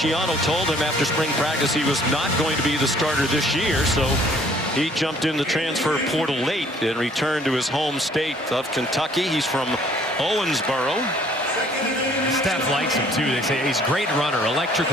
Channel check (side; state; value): both; normal; correlation 0.58